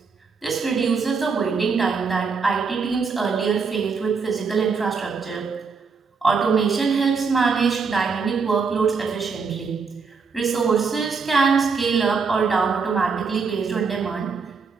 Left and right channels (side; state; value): left; quieter; 5.2 dB